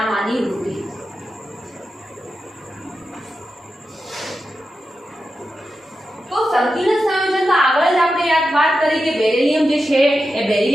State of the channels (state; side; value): normal; both; correlation 0.90